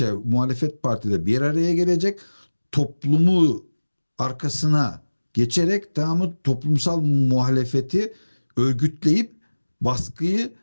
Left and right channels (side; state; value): both; inverted; correlation -1.00